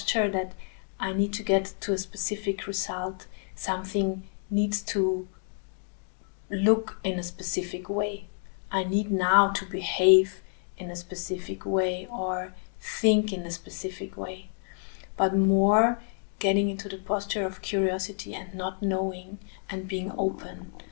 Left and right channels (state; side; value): silent; right; 56 dB below the other